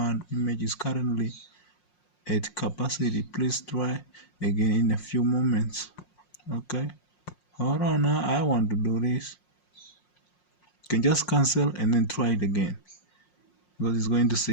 Image is currently at capacity. Please try again in a few moments. Okay, hold on now. I want to do this. You can just cancel and then try it again, because it's going to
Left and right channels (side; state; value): right; late; 5.6 ms